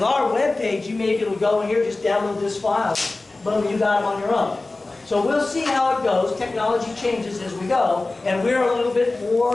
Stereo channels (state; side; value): quieter; right; 3.2 dB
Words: our web page, you may be able to go in here, just download this file. Boom, you got it on your own. So we'll see how it goes. Technology changes as we go, and we're a little bit